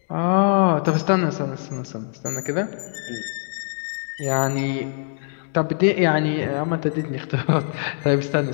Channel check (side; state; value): right; silent; digital silence